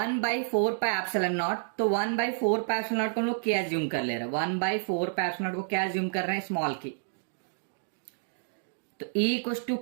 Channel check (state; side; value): silent; left; digital silence